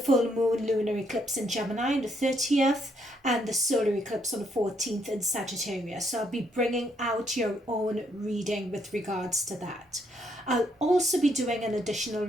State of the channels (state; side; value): normal; both; correlation 0.73